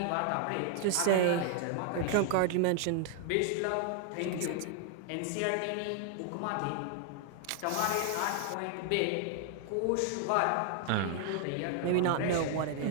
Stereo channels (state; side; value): different; both; correlation 0.00